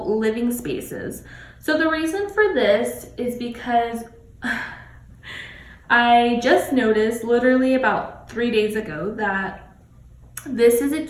living spaces. So the reason for this is because I just noticed literally about 3 days ago that this is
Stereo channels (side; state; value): both; identical; correlation 1.00